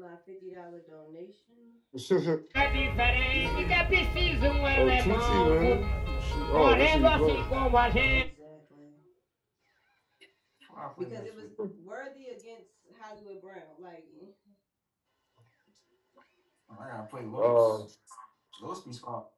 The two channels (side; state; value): both; identical; correlation 1.00